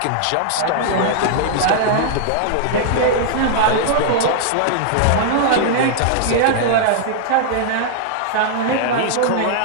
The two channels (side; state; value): both; different; correlation -0.01